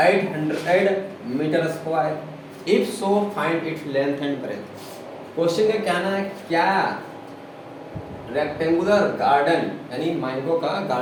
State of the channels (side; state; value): both; identical; correlation 1.00